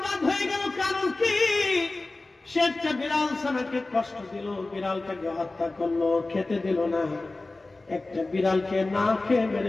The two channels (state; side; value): quieter; right; 3.1 dB